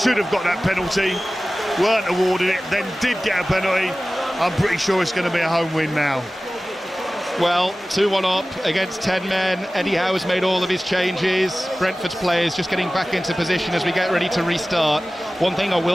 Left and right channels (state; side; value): normal; both; correlation 0.96